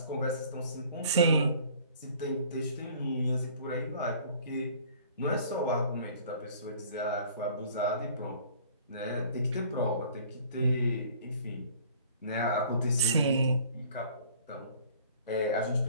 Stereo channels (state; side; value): inverted; both; correlation -0.51